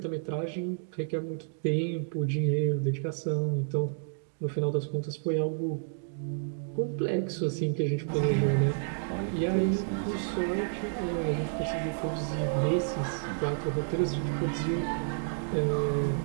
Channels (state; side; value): silent; left; digital silence